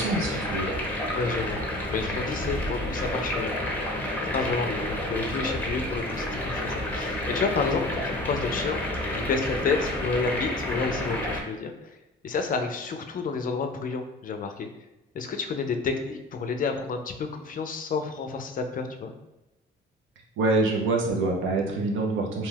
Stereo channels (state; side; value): normal; both; correlation 0.38